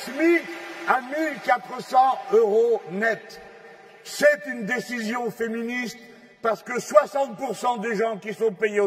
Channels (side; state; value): both; identical; correlation 1.00